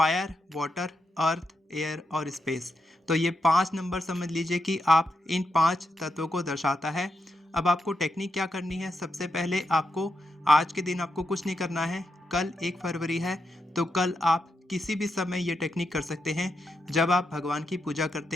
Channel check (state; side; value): normal; both; correlation 0.84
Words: वाटर, अर्थ, एयर और स्पेस। तो ये 5 नंबर समझ लीजिए कि आप इन 5 तत्वों को दर्शाता है। अब आपको टेक्निक क्या करनी है? सबसे पहले आपको आज के दिन आपको कुछ नहीं करना है। कल 1 फरवरी है तो कल आप किसी भी समय ये टेक्निक कर सकते हैं। जब आप भगवान की पूजा